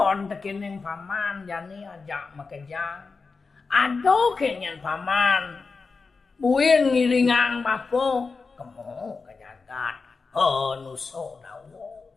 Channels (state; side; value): quieter; right; 4.5 dB